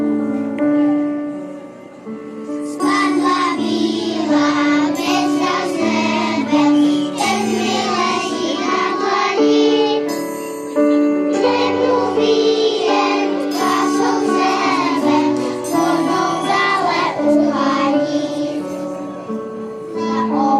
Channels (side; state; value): both; identical; correlation 1.00